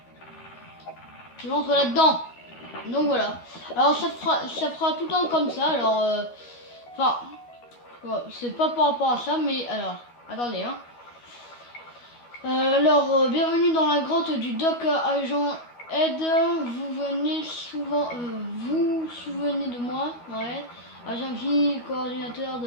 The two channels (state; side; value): late; right; 12 ms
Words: je rentre là-dedans. Donc voilà. Alors ça fera tout le temps comme ça, alors... Enfin, c'est pas par rapport à ça, mais alors... Attendez, hein. Alors, bienvenue dans la grotte du Doc Agent Ed. Vous venez souvent... vous souvenez de moi? Ouais. Agent P, coordinateur de